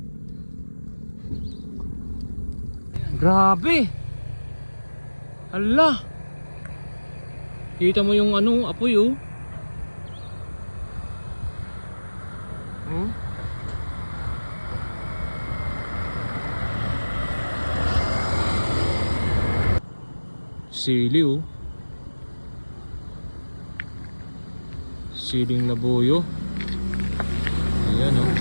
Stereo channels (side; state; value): both; inverted; correlation -1.00